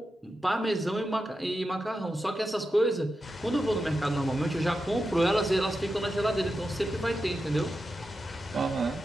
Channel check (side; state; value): both; normal; correlation 0.90